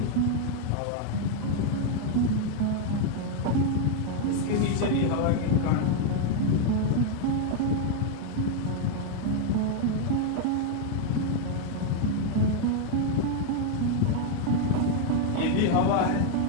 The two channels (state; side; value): different; both; correlation 0.00